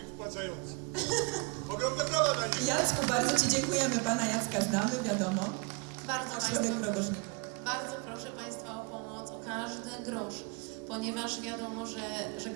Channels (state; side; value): quieter; left; 30.3 dB